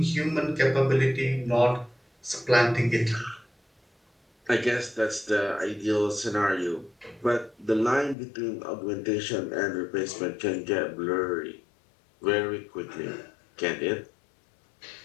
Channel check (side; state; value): right; drops out; at 8.2 s